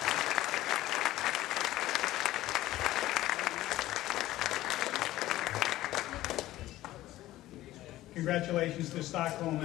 Congratulations to Stockholm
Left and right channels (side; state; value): right; quieter; 15.5 dB